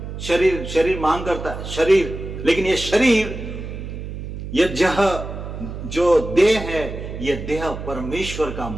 शरीर मांग करता है शरीर, लेकिन ये शरीर, ये जो देह है, ये देह परमेश्वर का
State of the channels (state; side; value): noise; right; hum, 8 dB below the sound